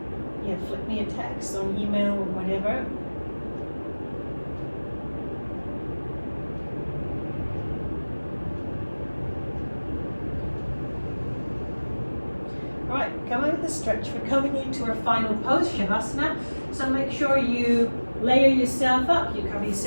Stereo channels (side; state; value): both; inverted; correlation -1.00